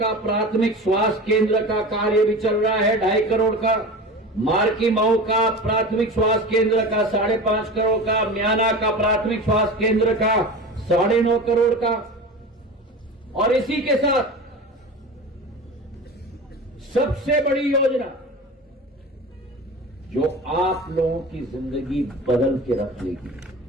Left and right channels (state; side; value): normal; both; correlation 0.32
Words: प्राथमिक स्वास्थ्य केंद्र का कार्य भी चल रहा है 2.5 करोड़ का, मार्की मऊ का प्राथमिक स्वास्थ्य केंद्र का 5.5 करोड़ का, म्याना का प्राथमिक स्वास्थ्य केंद्र का 9.5 करोड़ का, और इसी के साथ सबसे बड़ी योजना जो आप लोगों की जिंदगी बदल के रख लेगी।